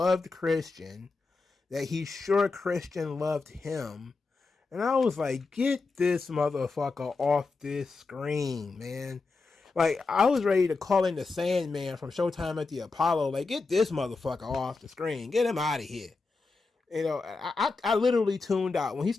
Christian, that he's sure Christian loved him. And I was like, get this motherfucker off this screen, man. Like, I was ready to call in the Sandman from Showtime at the Apollo. Like, get this motherfucker off the screen. Get him out of here. You know, I literally tuned out when he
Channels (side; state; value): right; quieter; 4.0 dB